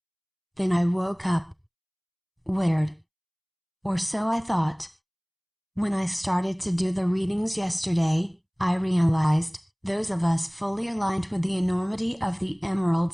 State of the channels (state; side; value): identical; both; correlation 1.00